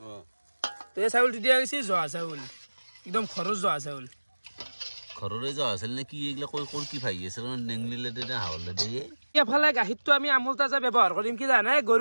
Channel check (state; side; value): inverted; both; correlation -1.00